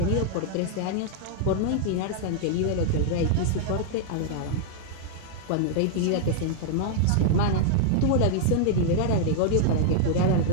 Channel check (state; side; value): different; both; correlation -0.01